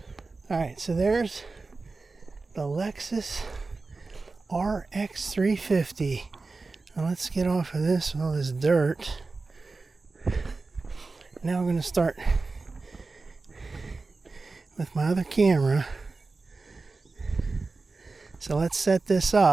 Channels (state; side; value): quieter; left; 3.8 dB